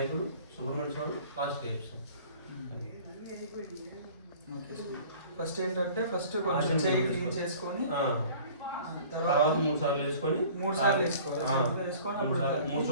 సుబ్రహ్మణ్య స్వామి, లాస్ట్ చేస్తాం. ఫస్ట్ ఏంటంటే కొంచెం చేయి క్లీన్ చేసుకొని తర్వాత 3 సార్లు వేసుకొని 3 సార్లు వేసుకోవాలి. 3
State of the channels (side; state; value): both; inverted; correlation -0.48